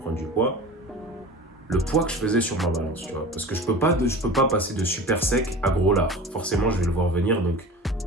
du poids, le poids que je faisais sur ma balance, tu vois. Parce que je peux pas passer de super sec à gros lard. Forcément, je vais le voir venir, donc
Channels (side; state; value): both; normal; correlation 0.36